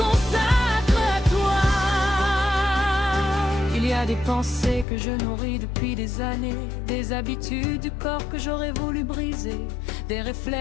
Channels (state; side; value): drops out; right; at 4.9 s